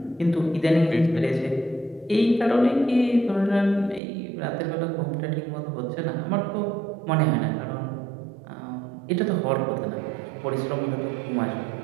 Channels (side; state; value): left; drops out; at 4.0 s